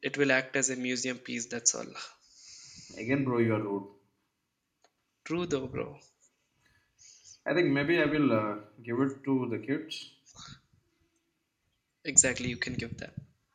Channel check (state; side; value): identical; both; correlation 1.00